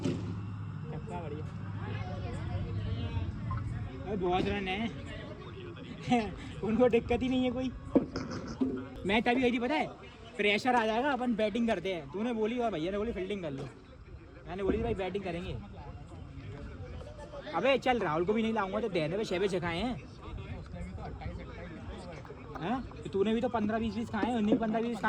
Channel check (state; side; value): identical; both; correlation 1.00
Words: छक्का बढ़िया। अरे बहुत रन है। उनको दिक्कत ही नहीं है कोई। मैच अभी गई थी पता है, प्रेशर आ जाएगा अपन बैटिंग करते हैं। तूने बोली और भैया ने बोली फील्डिंग कर लो, मैंने बोली भाई बैटिंग करेंगे। अबे चल राहुल को भी नहीं लाऊंगा तो देने पे 6 खाए हैं। हाँ? तो तूने भी तो 15-20 खाए हैं। 19-15-20